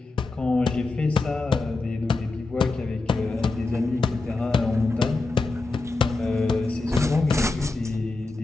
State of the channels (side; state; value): right; quieter; 3.4 dB